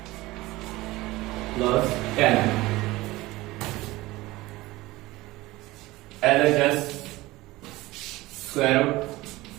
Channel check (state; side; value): quieter; left; 19.2 dB